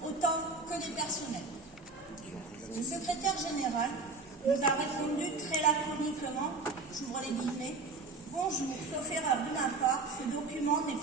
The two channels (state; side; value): quieter; left; 3.6 dB